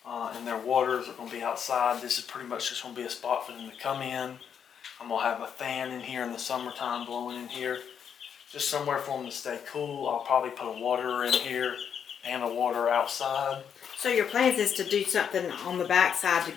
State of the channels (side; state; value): right; quieter; 7.8 dB